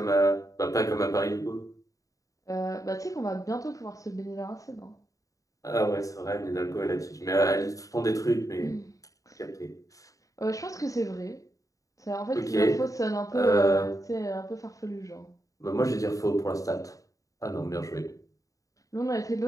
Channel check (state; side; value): late; right; 0.16 ms